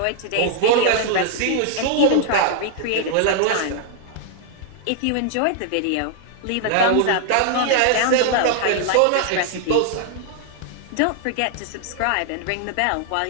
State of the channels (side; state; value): both; different; correlation 0.00